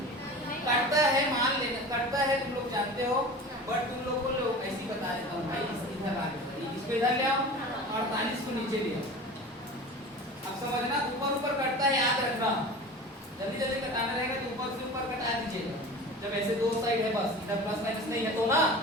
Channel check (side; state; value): both; normal; correlation 0.36